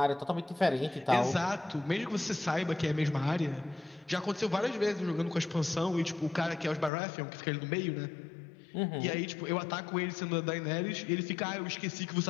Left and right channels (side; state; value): right; drops out; at 6.9 s